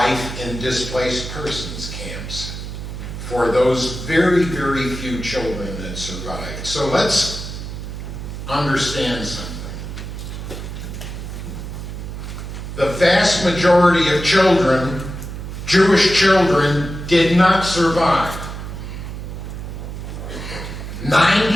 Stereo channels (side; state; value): right; noise; hum, 8 dB below the sound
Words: in displaced persons camps for those very, very few children that survived. So let's understand something. The vast majority of children, Jewish children, did not survive.